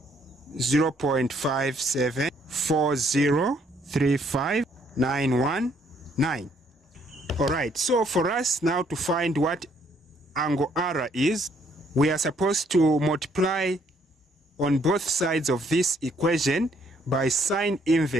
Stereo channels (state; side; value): normal; both; correlation 0.67